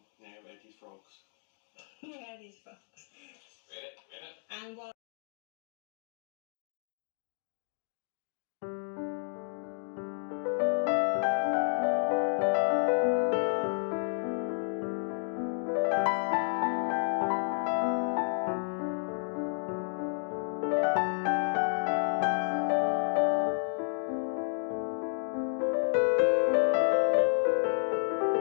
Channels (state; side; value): silent; right; 57 dB below the other